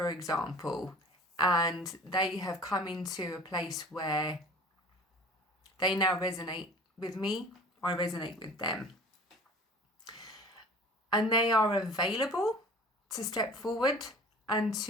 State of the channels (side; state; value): both; normal; correlation 0.44